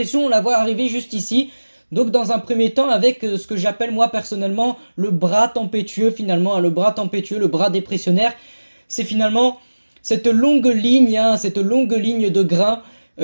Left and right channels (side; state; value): both; inverted; correlation -1.00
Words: on la voit arriver juste ici. Donc dans un premier temps avec ce que j'appelle moi personnellement le bras tempétueux finalement, hein, le bras tempétueux, le bras dépressionnaire. C'est finalement cette longue ligne, hein, cette longue ligne de grains